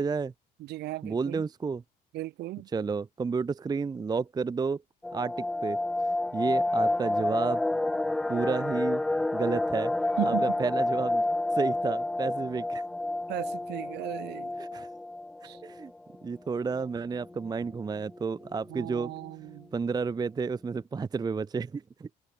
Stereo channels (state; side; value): normal; both; correlation 0.85